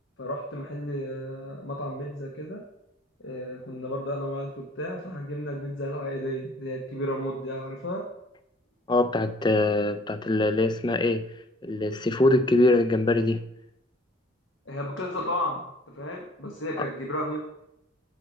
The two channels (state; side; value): normal; both; correlation 0.55